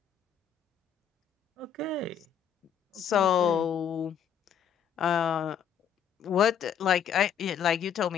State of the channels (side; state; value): right; quieter; 8.1 dB